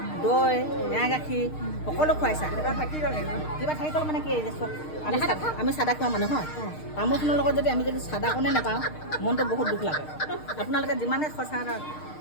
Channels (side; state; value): right; late; 6.5 ms